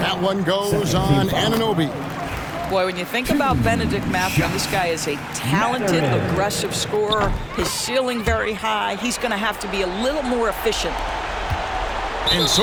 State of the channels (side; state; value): both; identical; correlation 1.00